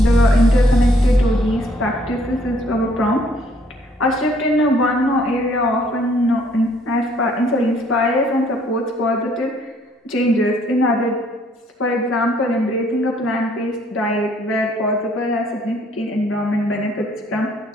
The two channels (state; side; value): normal; both; correlation 0.64